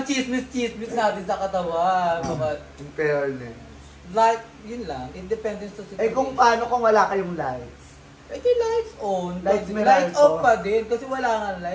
chismis natin sa katawan. In fairness. Like, yun lang. Independent sa situation. Kung paano kung wala kayong lights? Di lights on. Lights off pa din. Kasi wala nga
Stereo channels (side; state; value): both; identical; correlation 1.00